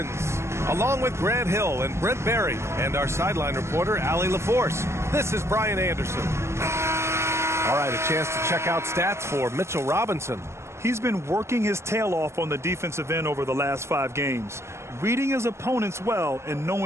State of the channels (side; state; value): left; late; 0.13 ms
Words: along with Grant Hill and Brent Barry and our sideline reporter, Allie LaForce. This is Brian Anderson. All right, a chance to check out stats for Mitchell Robinson. He's been working his tail off on the defensive end over the last 5 games, reading his opponents well and